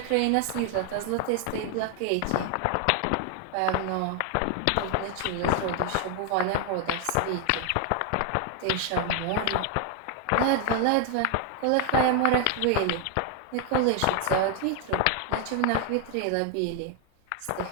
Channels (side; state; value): both; different; correlation 0.00